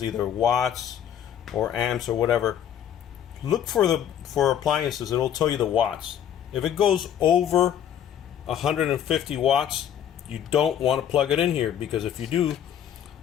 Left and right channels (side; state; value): right; quieter; 9.7 dB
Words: either watts or amps or whatever. Look for appliances, it'll tell you the watts. If it goes over 150 watts, you don't want to plug it in here, because if you do,